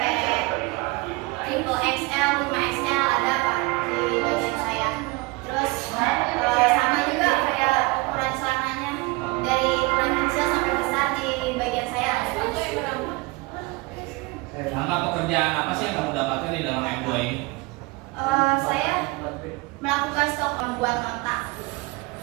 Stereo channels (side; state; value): left; quieter; 23.6 dB